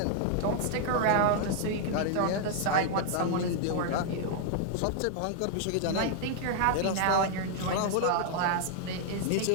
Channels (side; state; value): both; different; correlation -0.01